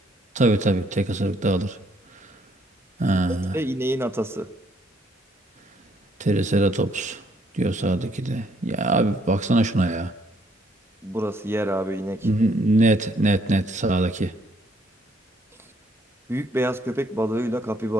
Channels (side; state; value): both; normal; correlation 0.68